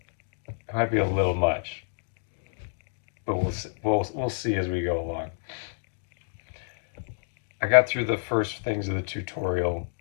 might be a little much, but we'll see as we go along. I got through the first things of the tutorial.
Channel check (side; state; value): right; silent; digital silence